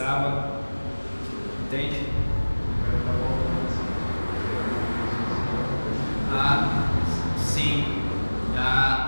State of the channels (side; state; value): both; inverted; correlation -1.00